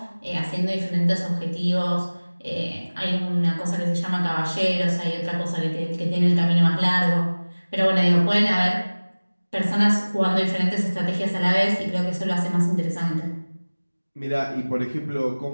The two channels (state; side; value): inverted; both; correlation -1.00